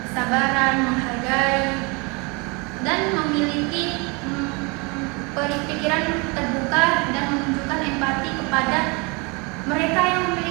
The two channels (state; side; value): quieter; left; 29.4 dB